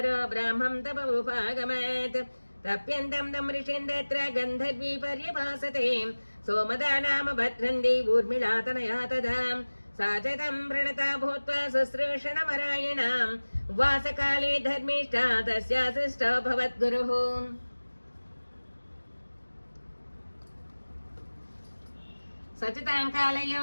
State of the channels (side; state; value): both; inverted; correlation -1.00